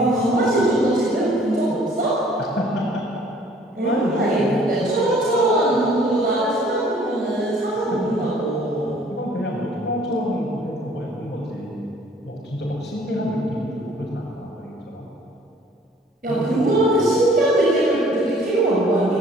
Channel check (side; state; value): both; normal; correlation 0.56